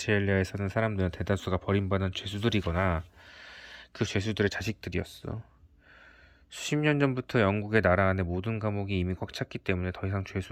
사는 사람들은 대다수가 버림받은 죄수들이거나 그 죄수들의 자식들이었어. 수십 년 전부터 영국의 나라 안에 모든 감옥이 이미 꽉 찼기 때문에 더 이상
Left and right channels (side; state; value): both; identical; correlation 1.00